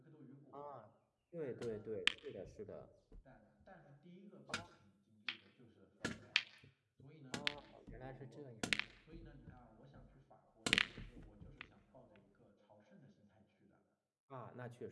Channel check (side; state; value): both; identical; correlation 1.00